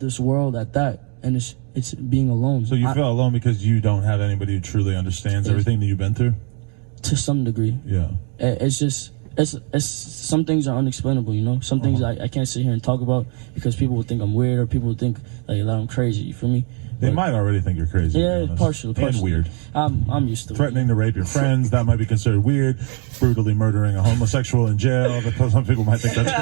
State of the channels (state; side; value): quieter; left; 39.0 dB